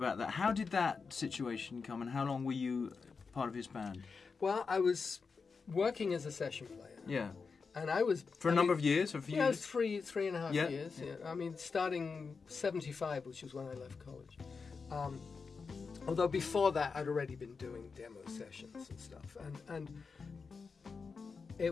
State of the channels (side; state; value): right; quieter; 5.0 dB